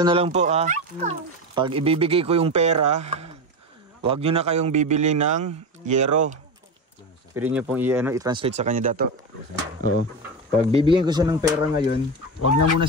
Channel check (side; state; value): both; normal; correlation 0.19